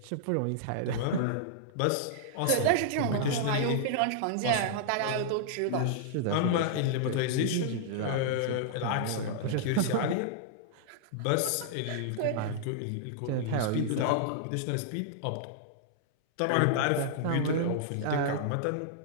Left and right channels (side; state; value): both; different; correlation -0.01